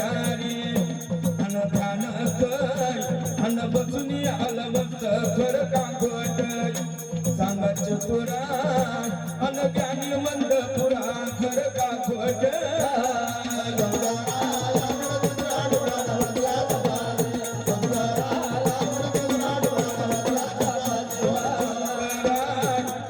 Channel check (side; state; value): both; identical; correlation 1.00